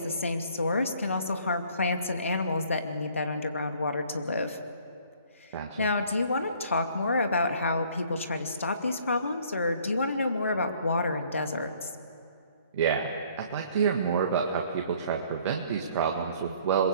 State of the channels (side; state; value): both; inverted; correlation -0.58